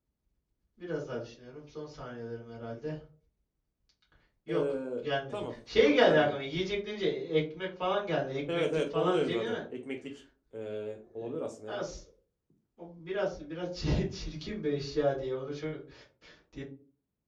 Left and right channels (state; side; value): identical; both; correlation 1.00